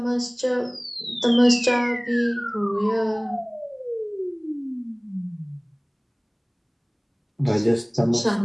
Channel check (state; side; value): identical; both; correlation 1.00